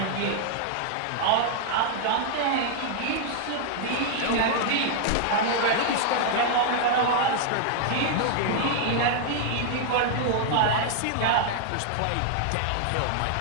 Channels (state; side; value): different; both; correlation -0.01